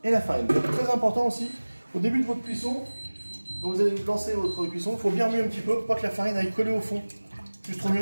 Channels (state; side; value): inverted; both; correlation -1.00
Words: et la farine. Donc, très important aussi, au début de votre cuisson, quand vous allez lancer votre cuisson, il faut bien remuer un petit peu pour pas que la farine aille coller au fond. Juste